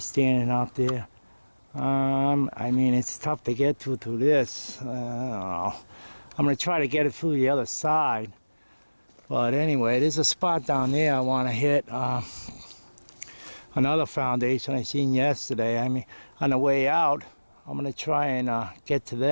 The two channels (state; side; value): inverted; both; correlation -1.00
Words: out there. I mean, it's tough to get through this. I don't know. I'm gonna try to get it through the other side. But anyway, there's a spot down there I want to hit. Another foundation I seen yesterday. I mean, on the way out, I'm gonna try and get to